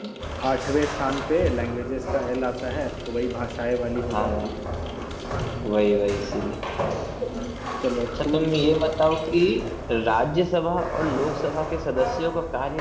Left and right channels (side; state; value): both; identical; correlation 1.00